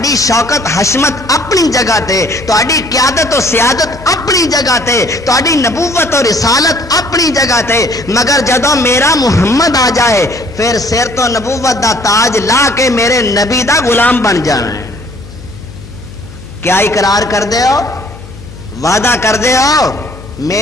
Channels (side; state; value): left; noise; hum, 17 dB below the sound